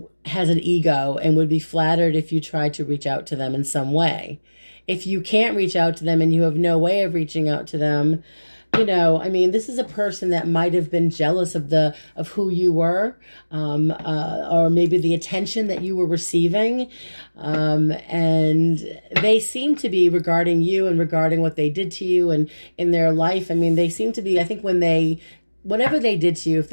has an ego and would be flattered if you tried to reach out to them in some way. If you can't reach out to them and you have no way of reaching out to them, this is a person that might have been jealous of who you were, or maybe the attention that you were receiving. And they seem to be, regarding you and regarding what they did to you and in their life, they seem to be, I think whatever they did to you, if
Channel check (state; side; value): inverted; both; correlation -1.00